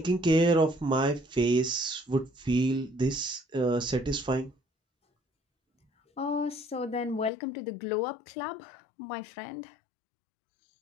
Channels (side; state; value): right; drops out; at 7.3 s